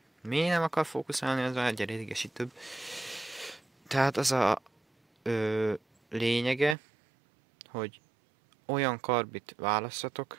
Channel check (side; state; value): left; drops out; at 6.8 s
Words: Miért nem akar fókuszálni, az már egyre idegesítőbb. Tehát az a lényege, hogy olyan karbit választatok,